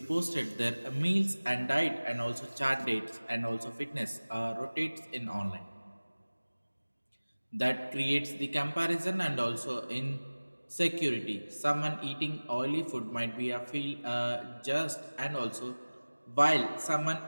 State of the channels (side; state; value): both; inverted; correlation -1.00